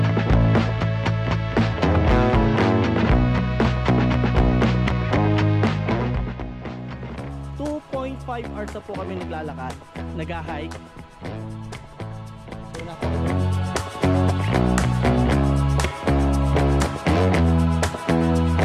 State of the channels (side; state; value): both; identical; correlation 1.00